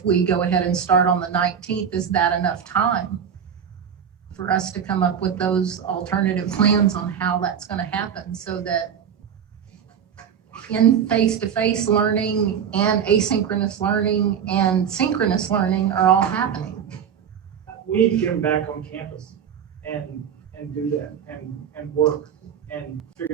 we go ahead and start on the 19th, is that enough time for us to come up with those alternative plans on how that's going to happen so that in face-to-face learning and asynchronous learning and synchronous learning are all happening? We need to get them back on campus and do that and work and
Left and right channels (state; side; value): quieter; left; 7.9 dB